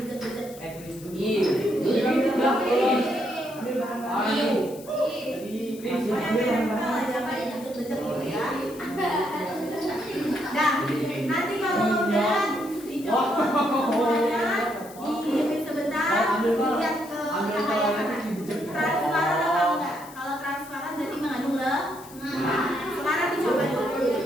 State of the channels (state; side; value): noise; left; hiss, 19 dB below the sound